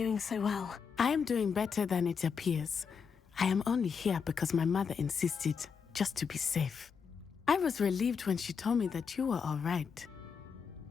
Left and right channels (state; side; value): quieter; right; 6.2 dB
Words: so well. I am doing better than it appears. I am only here because my mother insisted, just to be safe. I was relieved when she told me that you were all right.